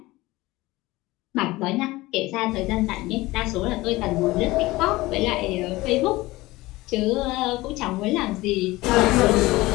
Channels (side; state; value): right; quieter; 19.6 dB